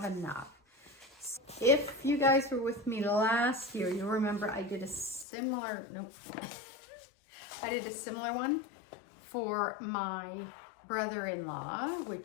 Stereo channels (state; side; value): drops out; right; at 5.2 s